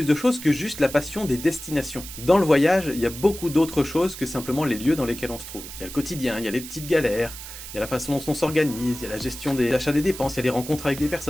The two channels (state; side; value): noise; right; hiss, 12 dB below the sound